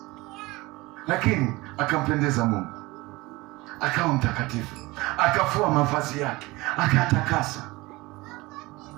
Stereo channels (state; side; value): quieter; left; 21.6 dB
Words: Lakini akampendeza Mungu. Akawa mtakatifu. Akafua mavazi yake, akatakasa.